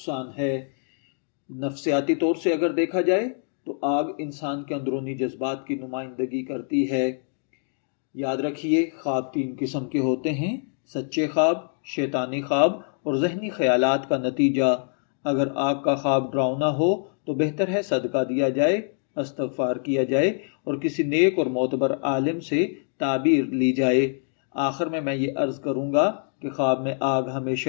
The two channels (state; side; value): silent; right; 62 dB below the other